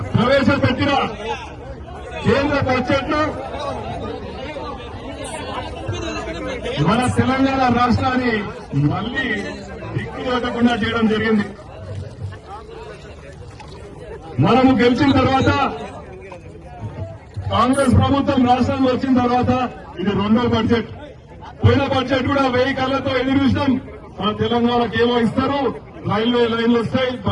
ప్రవేశపెట్టిన కేంద్ర బడ్జెట్ లో మన తెలంగాణ రాష్ట్రాన్ని మళ్లీ దిక్కులేకుండా చేయడం జరిగింది. మనము గెలిచిన తర్వాత కాంగ్రెస్ ప్రభుత్వం రాష్ట్రంలో వచ్చిన తర్వాత ఇది రెండో బడ్జెట్. పోయిన బడ్జెట్ కూడా 1000 కళ్లతో ఎదురు చూసినాం. మన తెలంగాణకు ఏమో ఇస్తారు, రైల్వే లైన్లు వస్తాయి,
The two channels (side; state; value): both; identical; correlation 1.00